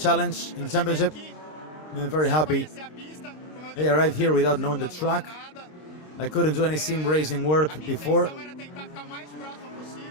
in the championship. I'm very happy. I arrived here without knowing the track. I couldn't do any sim racing work before.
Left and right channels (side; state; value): right; late; 26 ms